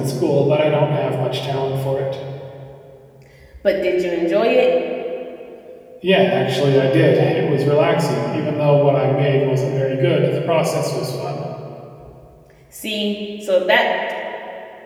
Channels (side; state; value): both; identical; correlation 1.00